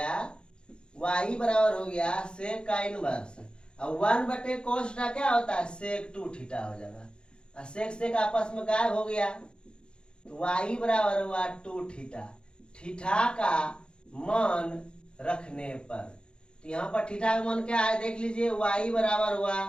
y बराबर हो गया सेक का इनवर्स, अब 1 बटे cos थीटा क्या होता है सेक 2 थीटा हो जाएगा, और सेक सेक आपस में गायब हो गया। तो y बराबर हुआ 2 थीटा, थीटा का मान रखने पर। तो यहाँ पर थीटा का मान क्या है देख लीजिए, y बराबर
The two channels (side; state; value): right; late; 0.052 ms